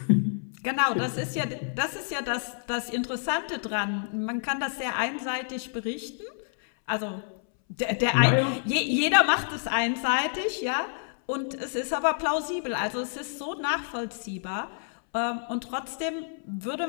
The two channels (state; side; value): silent; right; 59 dB below the other